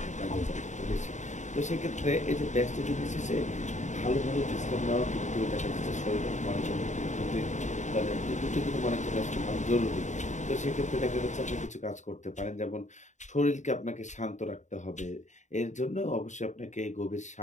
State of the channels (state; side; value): late; right; 0.35 ms